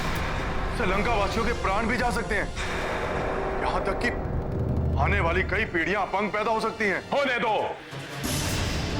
श्रीलंका वासियों के प्राण भी जा सकते हैं, यहां तक कि आने वाली कई पीढ़ियां अपंग पैदा हो सकती हैं। होने दो,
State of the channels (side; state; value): both; identical; correlation 1.00